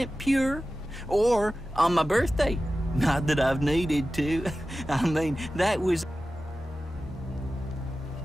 pure. Or on my birthday. Not that I've needed to. I mean, that was...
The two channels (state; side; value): normal; both; correlation 0.95